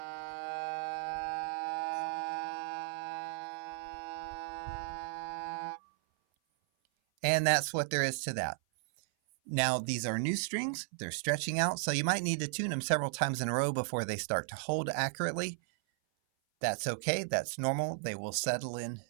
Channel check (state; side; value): silent; left; 54 dB below the other